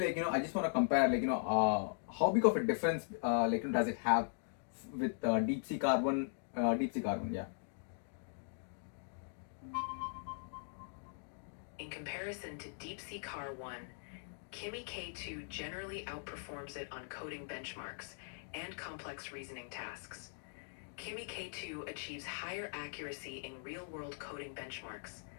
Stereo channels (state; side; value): silent; right; digital silence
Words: I just want to compare, how big of a difference, does it have with Deep Sea Carbon, yeah. In comparison to DeepSeek R1, Kimi K2 generally outperforms it on coding benchmarks and complex reasoning tasks. Kimi K2 achieves higher accuracy in real-world coding benchmarks,